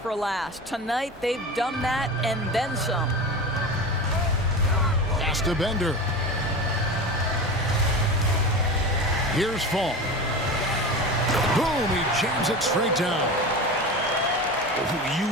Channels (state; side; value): normal; both; correlation 0.28